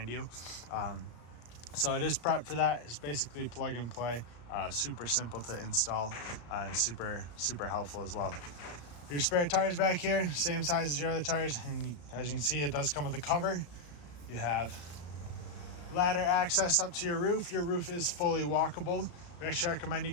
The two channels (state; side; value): late; right; 34 ms